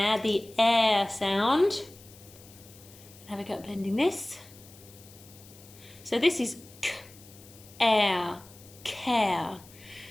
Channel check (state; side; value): noise; left; hiss, 22 dB below the sound